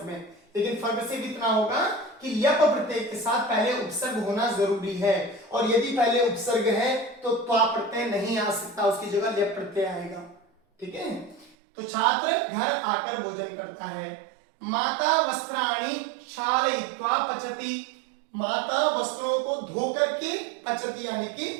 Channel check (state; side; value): drops out; left; at 11.6 s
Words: में, लेकिन फर्क सिर्फ इतना होगा कि ल्यप प्रत्यय के साथ पहले उपसर्ग होना जरूरी है, और यदि पहले उपसर्ग है तो त्वा प्रत्यय नहीं आ सकता, उसकी जगह ल्यप प्रत्यय आएगा। ठीक है, तो छात्र घर आकर भोजन करता है। माता वस्त्राणि क्षालयित्वा पचति, माता वस्त्रों को धो करके पचति यानी